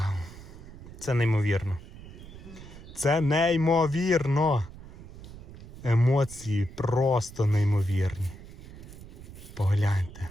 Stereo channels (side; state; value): right; noise; rumble, 15 dB below the sound